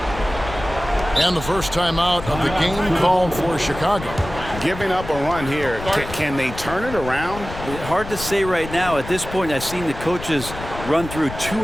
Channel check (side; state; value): left; noise; rumble, 11 dB below the sound